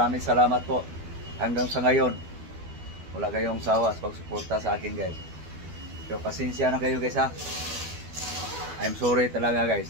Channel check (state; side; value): late; left; 12 ms